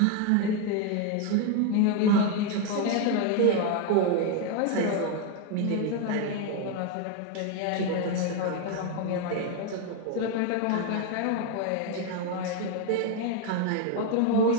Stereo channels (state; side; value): different; both; correlation 0.01